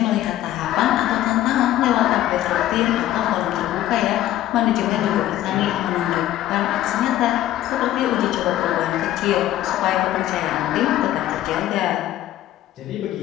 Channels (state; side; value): quieter; right; 13.5 dB